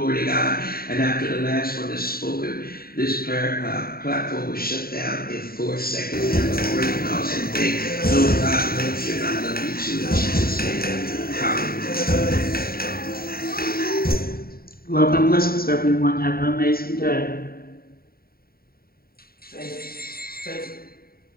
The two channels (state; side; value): late; right; 0.43 ms